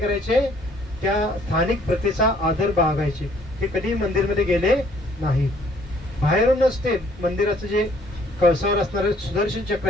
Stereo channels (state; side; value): normal; both; correlation 0.62